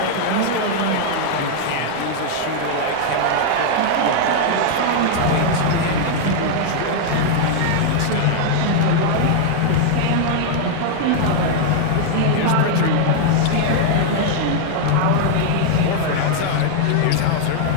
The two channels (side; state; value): both; different; correlation 0.00